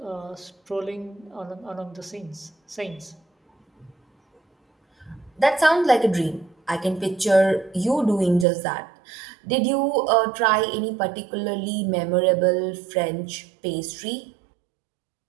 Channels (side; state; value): left; drops out; at 8.5 s